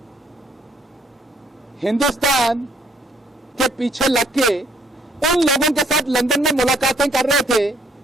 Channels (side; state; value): both; normal; correlation 0.65